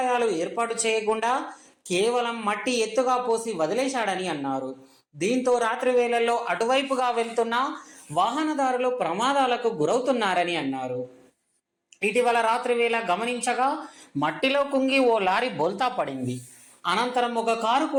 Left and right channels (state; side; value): identical; both; correlation 1.00